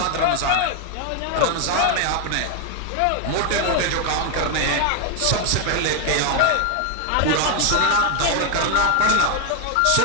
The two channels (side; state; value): both; different; correlation 0.00